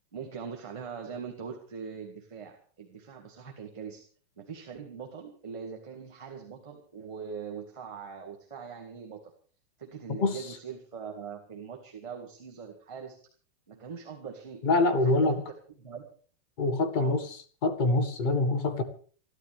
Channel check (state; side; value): late; right; 2.2 ms